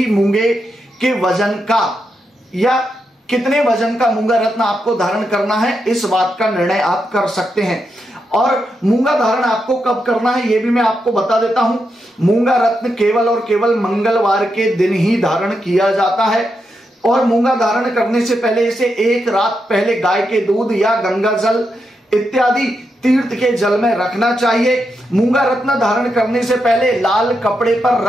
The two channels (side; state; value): both; normal; correlation 0.84